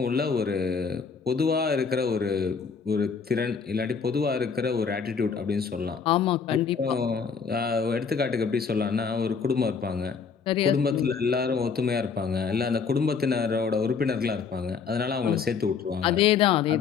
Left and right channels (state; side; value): quieter; right; 5.8 dB